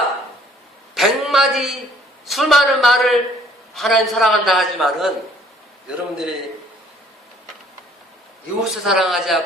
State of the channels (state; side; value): normal; both; correlation 0.59